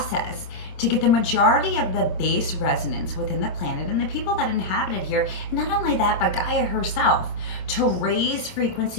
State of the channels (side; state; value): right; late; 27 ms